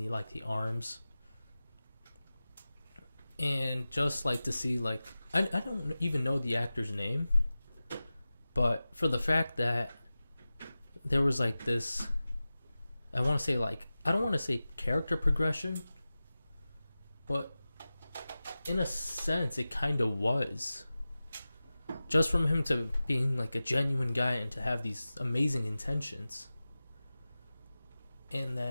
arms. And just like to see like I don't even know the actor's name, but for the fact that there was like this, I want to say like, I don't want to say character progression, but in a sense it kind of was. Just from him to being like a genuine guy and to have these amazing intentions. And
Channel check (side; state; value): both; inverted; correlation -0.96